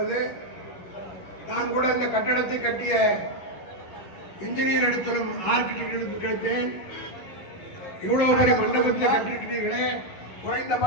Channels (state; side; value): late; right; 11 ms